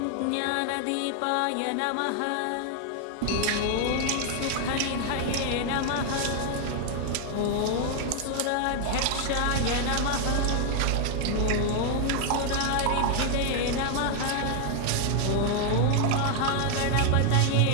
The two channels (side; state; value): both; different; correlation 0.00